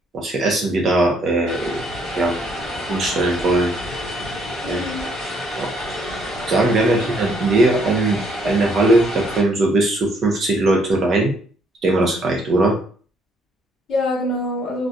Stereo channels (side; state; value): both; normal; correlation 0.68